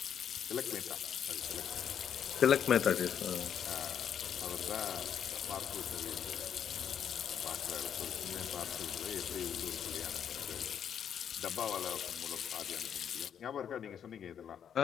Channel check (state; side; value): quieter; right; 8.6 dB